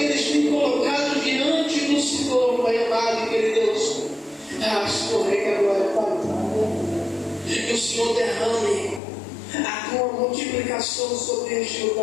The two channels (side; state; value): right; drops out; at 9.0 s